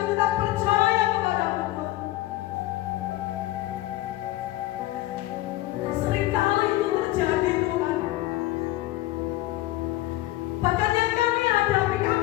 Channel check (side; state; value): right; quieter; 16.8 dB